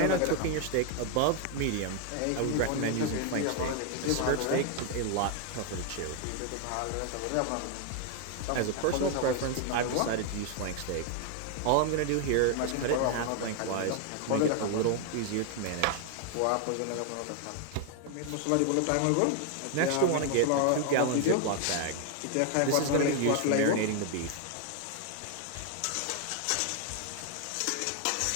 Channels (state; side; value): different; both; correlation 0.00